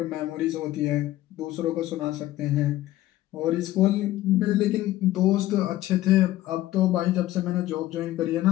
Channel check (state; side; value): quieter; right; 15.2 dB